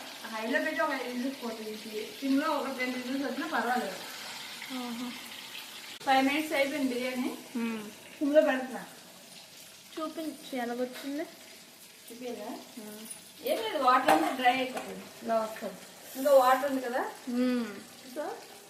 పెట్టి ఒక 5 minutes పోతుంది. సిమ్లో ఒక 10 minutes వచ్చినా పర్వాలేదు. 5 minutes అయిపోయింది బిర్యానీ. సిమ్లో పెడుతున్నా. చూపించి ఎలాగొచ్చింది. చూపించా? ఏం లేదు, వాటర్ అంతా డ్రై అయిపోతుంది. ఇలా వస్తుంది. ఇంకా వాటర్ ఉంది కదా, సో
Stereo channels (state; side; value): identical; both; correlation 1.00